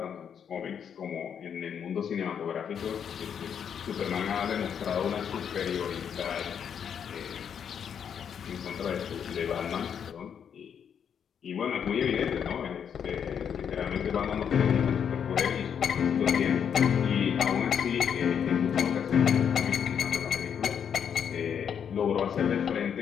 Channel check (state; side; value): quieter; right; 7.9 dB